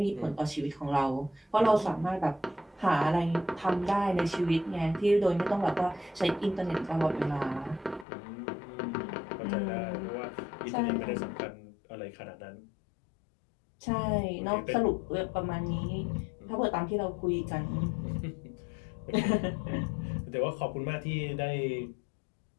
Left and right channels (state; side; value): drops out; right; at 8.1 s